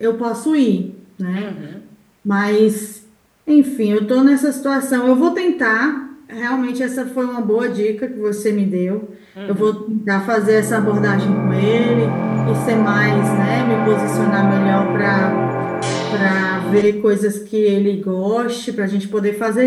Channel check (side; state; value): both; identical; correlation 1.00